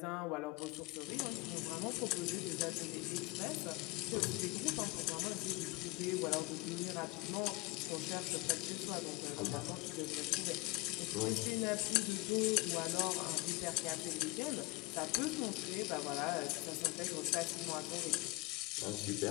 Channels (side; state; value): right; quieter; 22.7 dB